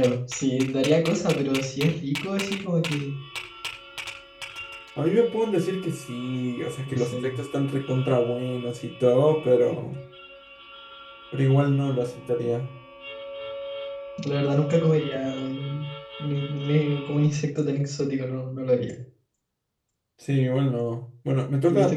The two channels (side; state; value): both; identical; correlation 1.00